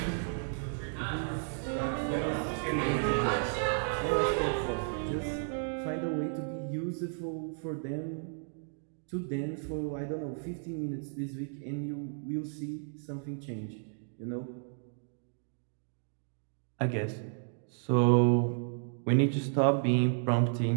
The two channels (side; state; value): left; silent; digital silence